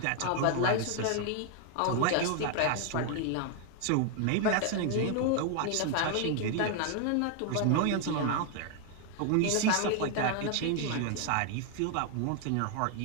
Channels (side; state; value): both; different; correlation 0.00